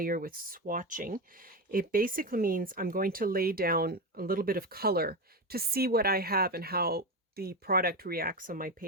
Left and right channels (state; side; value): normal; both; correlation 0.17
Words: with swatching, it basically means I'm going to lay down a little bit of color to see what I have and how the product reacts on my